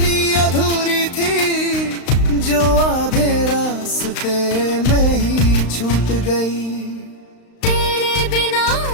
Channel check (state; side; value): late; right; 35 ms